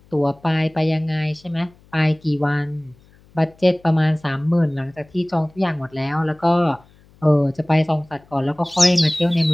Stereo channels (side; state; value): left; noise; hum, 29 dB below the sound